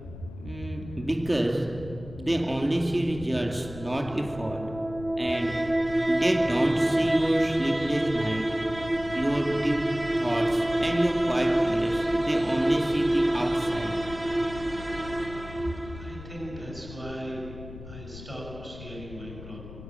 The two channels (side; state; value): left; noise; rumble, 14 dB below the sound